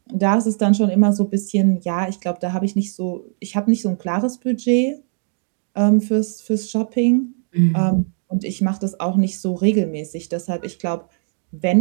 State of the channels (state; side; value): silent; left; 56 dB below the other